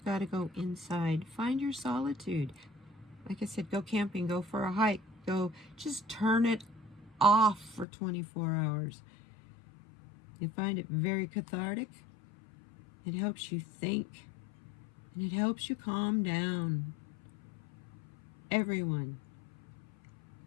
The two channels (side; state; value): right; drops out; at 7.9 s